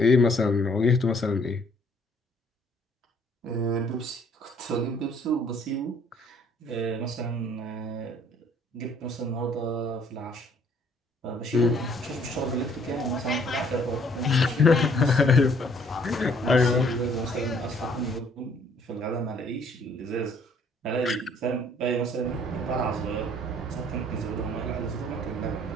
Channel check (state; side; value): normal; both; correlation 0.61